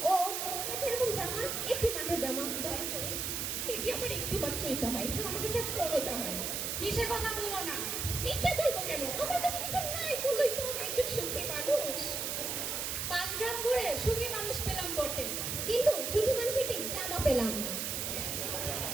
ও, ওর কাছে এরকম জামা, একটি মাত্র জামা, দয়া করে। এটি আমার একটি মাত্রই জামা, এছাড়া আমার কাছে আর কোনো জামা নেই। মিছে কথা বলো না। মিছে বলবো কেন? আমার কাছে কিছু নাই বলেই তো আমি একজন সুখী মানুষ। 5 গ্রাম করে সুখী মানুষ পেলাম বটে, কিন্তু সুখী মানুষ একটি জামা পেলাম না।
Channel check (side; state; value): right; noise; hiss, 2 dB below the sound